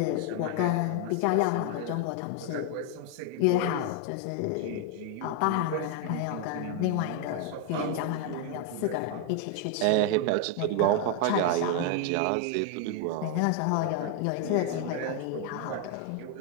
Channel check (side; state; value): both; different; correlation 0.01